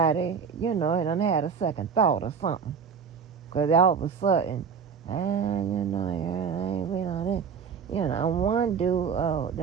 done had a second thought or something. Because all of a sudden, I ain't been on that. One dude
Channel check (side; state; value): left; quieter; 6.5 dB